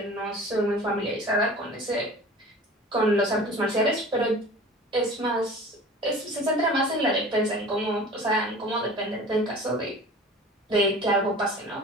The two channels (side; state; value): both; normal; correlation 0.41